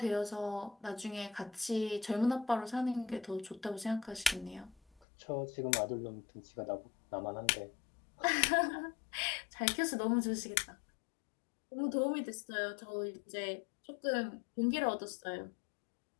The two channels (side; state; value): right; drops out; at 5.1 s